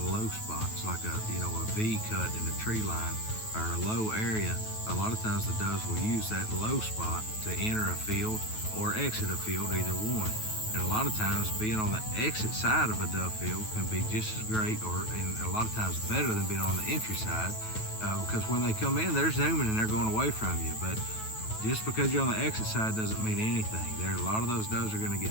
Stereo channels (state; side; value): late; right; 9.3 ms